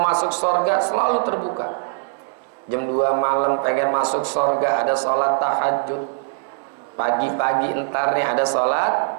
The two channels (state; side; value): silent; left; digital silence